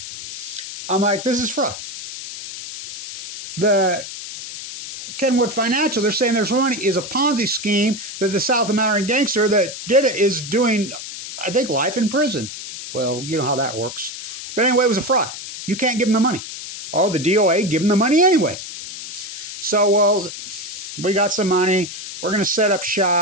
I'm like, this is fraud. The Kenwood Financial, they're saying there's money is a Ponzi scheme that the South American gangster that did it is doing, I think, life in prison. Well, you know how that works. But anyway, it was a fraud. You can't give them the money. Oh, the DOA give them the money anyway. So, well, we got some money. We're going to set up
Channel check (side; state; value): left; noise; hiss, 10 dB below the sound